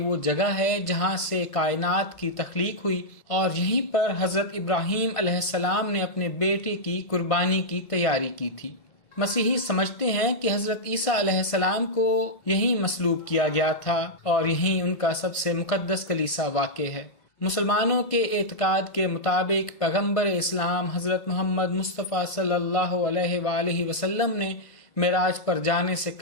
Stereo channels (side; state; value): right; late; 1.5 ms